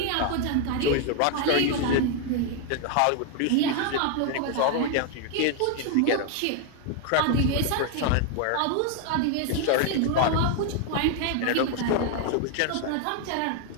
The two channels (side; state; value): both; different; correlation 0.00